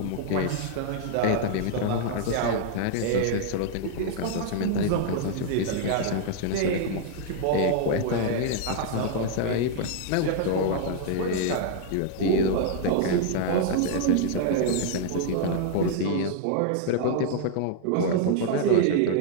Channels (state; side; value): different; both; correlation 0.00